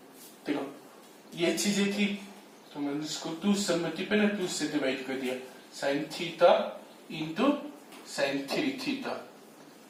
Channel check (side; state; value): both; identical; correlation 1.00